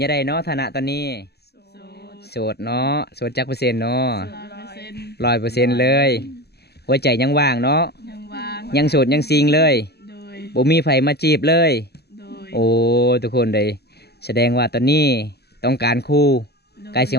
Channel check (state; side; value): late; right; 0.47 ms